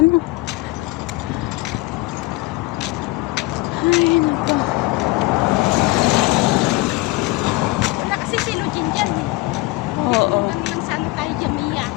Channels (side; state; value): right; quieter; 20.6 dB